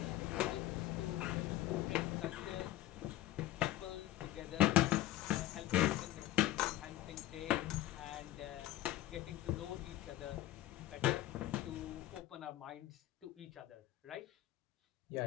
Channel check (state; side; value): quieter; right; 14.8 dB